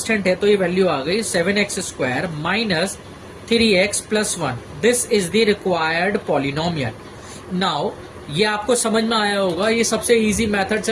है, तो ये वैल्यू आ गई 7x square minus 3x plus 1। This is the required polynomial. Now ये आपको समझ में आया होगा, ये सबसे इजी मेथड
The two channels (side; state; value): both; identical; correlation 1.00